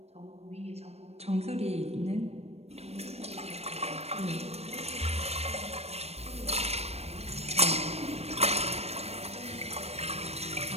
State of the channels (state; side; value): late; left; 0.31 ms